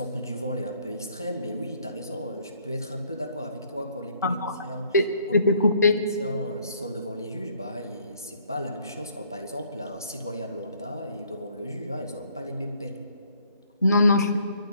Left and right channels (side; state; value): both; inverted; correlation -0.64